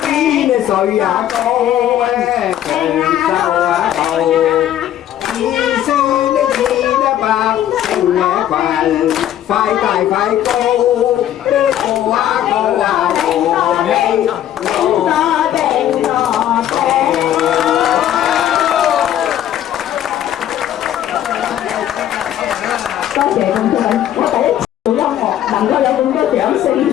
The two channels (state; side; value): quieter; right; 11.5 dB